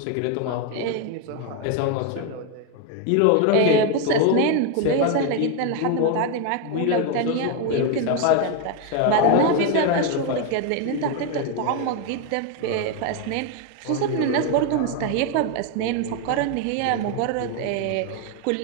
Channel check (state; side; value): different; both; correlation 0.01